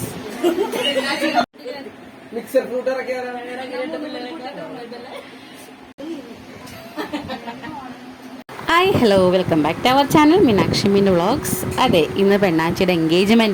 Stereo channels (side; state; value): both; identical; correlation 1.00